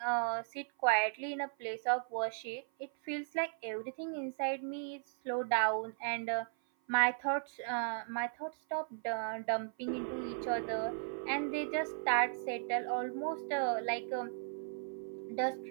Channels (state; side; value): silent; left; 53 dB below the other